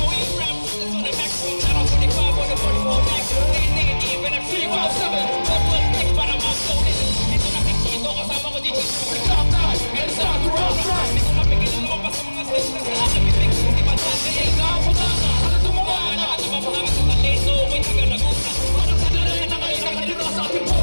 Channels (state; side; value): inverted; both; correlation -1.00